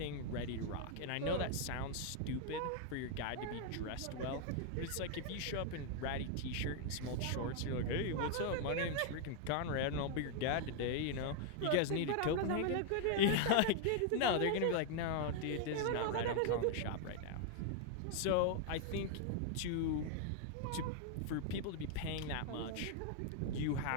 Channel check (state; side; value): different; both; correlation 0.00